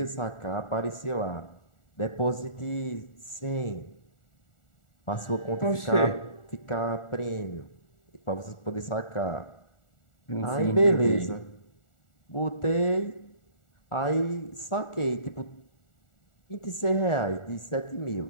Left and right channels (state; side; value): late; right; 1.4 ms